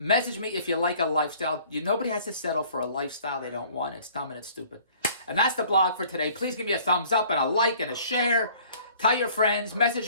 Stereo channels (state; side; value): inverted; both; correlation -0.54